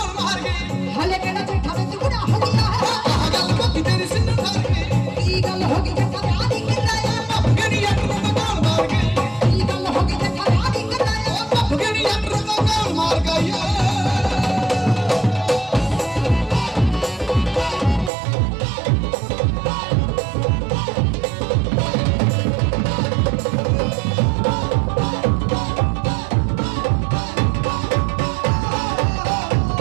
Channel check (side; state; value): left; drops out; at 18.1 s